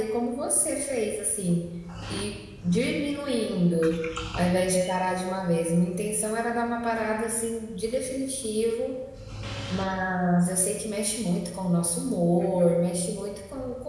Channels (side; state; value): both; identical; correlation 1.00